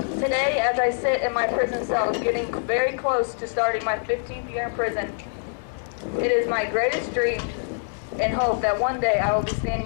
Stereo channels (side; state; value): right; silent; digital silence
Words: as I sit in my prison cell, getting very close to starting my 15th year in prison, it is my greatest dream and hope that one day I will be